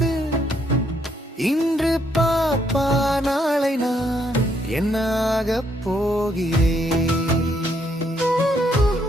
இன்று பாப்பா நாளை நான் என்னாக போகிறேன்.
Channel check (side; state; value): both; normal; correlation 0.72